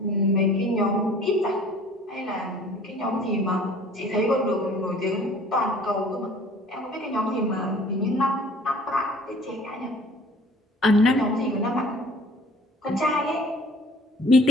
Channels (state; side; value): normal; both; correlation 0.51